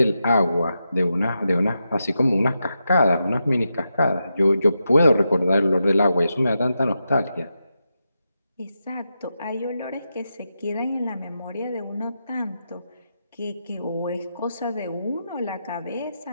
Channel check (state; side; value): inverted; both; correlation -0.87